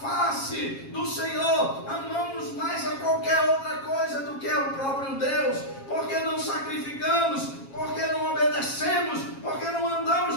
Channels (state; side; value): late; right; 7.4 ms